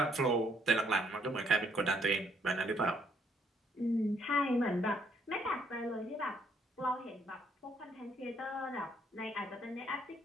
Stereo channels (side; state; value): both; normal; correlation 0.69